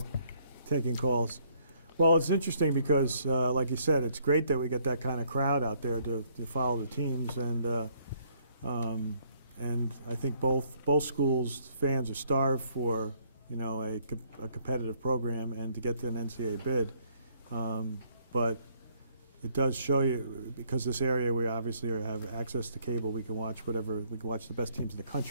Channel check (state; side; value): inverted; both; correlation -0.66